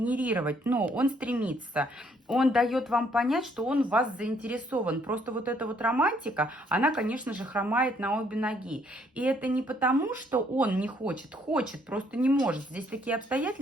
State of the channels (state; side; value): normal; both; correlation 0.67